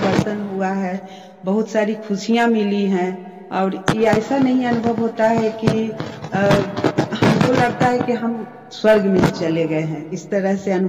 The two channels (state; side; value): identical; both; correlation 1.00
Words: हुआ है, बहुत सारी खुशियां मिली हैं और ये ऐसा नहीं अनुभव होता है कि हमको लगता है कि हम स्वर्ग में चले गए हैं, इस तरह से